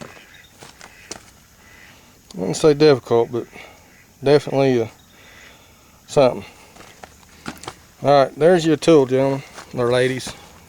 wouldn't say difficult, but definitely something. Alright, there's your tool, gentlemen or ladies.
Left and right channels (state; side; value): identical; both; correlation 1.00